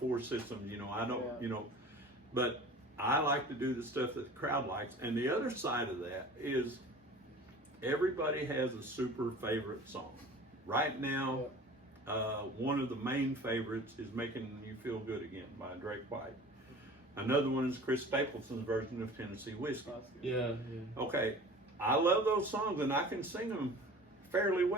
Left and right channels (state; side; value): normal; both; correlation 0.42